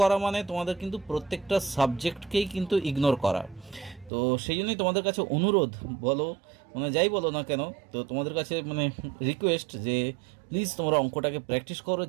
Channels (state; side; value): drops out; left; at 4.1 s